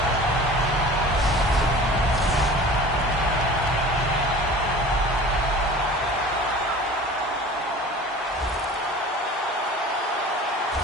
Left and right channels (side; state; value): both; normal; correlation 0.41